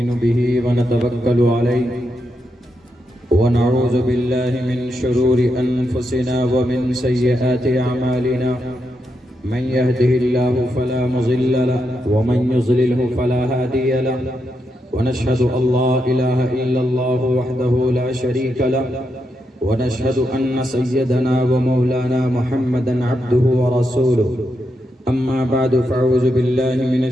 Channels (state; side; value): normal; both; correlation 0.83